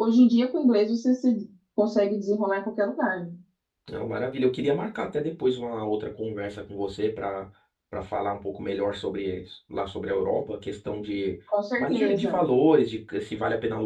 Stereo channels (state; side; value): identical; both; correlation 1.00